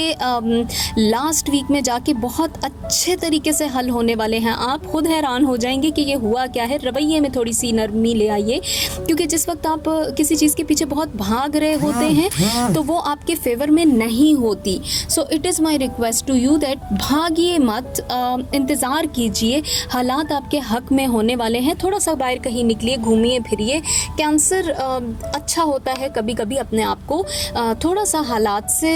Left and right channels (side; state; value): both; identical; correlation 1.00